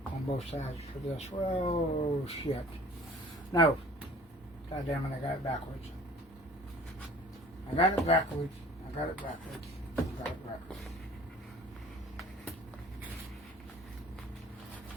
on both sides for this. Well, shit. No. God damn it, I got it backwards. I got it backwards. I got it backwards. I got it backwards.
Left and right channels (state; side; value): normal; both; correlation 0.49